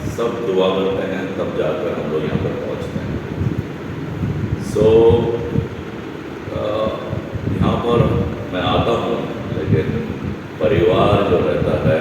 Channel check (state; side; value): identical; both; correlation 1.00